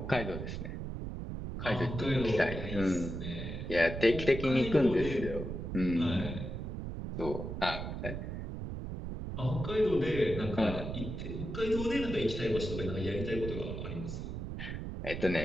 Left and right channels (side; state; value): right; noise; rumble, 6 dB below the sound